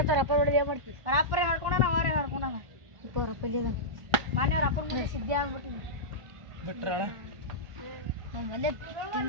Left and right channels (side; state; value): left; late; 1.5 ms